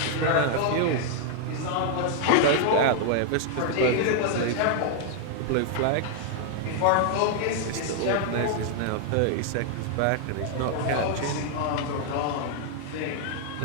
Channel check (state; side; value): different; both; correlation 0.00